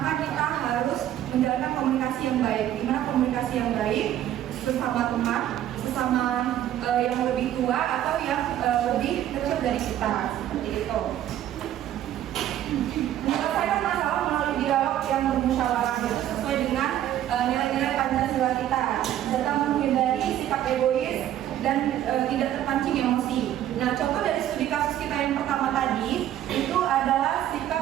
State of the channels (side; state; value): left; quieter; 11.9 dB